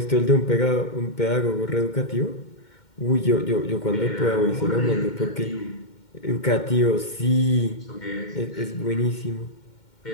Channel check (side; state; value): right; late; 2.1 ms